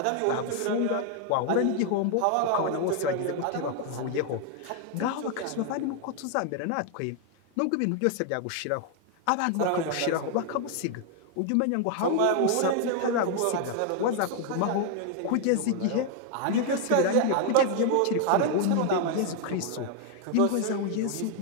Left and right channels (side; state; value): both; different; correlation 0.00